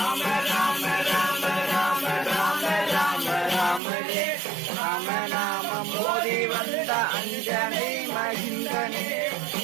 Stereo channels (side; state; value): left; drops out; at 3.8 s